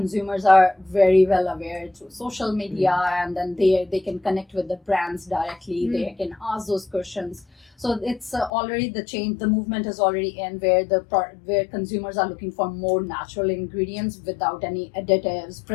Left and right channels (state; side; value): drops out; right; at 8.5 s